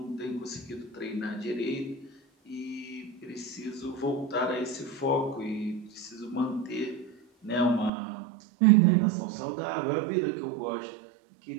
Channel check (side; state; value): left; drops out; at 7.9 s